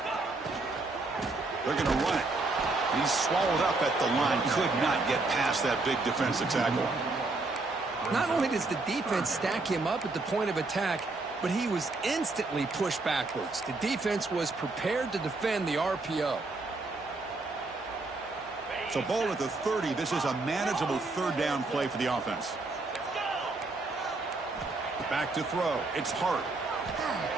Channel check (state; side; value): quieter; left; 3.3 dB